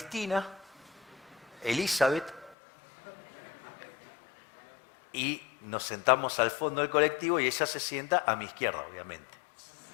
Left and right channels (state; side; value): drops out; right; at 2.6 s